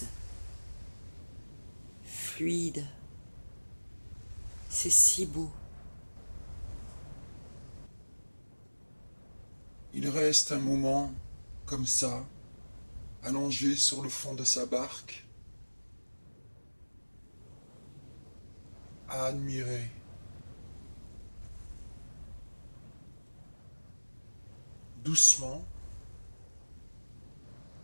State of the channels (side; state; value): both; inverted; correlation -1.00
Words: fluide. C'est si beau. Il reste un moment, comme ça, allongé sur le fond de sa barque, à admirer. Doucement,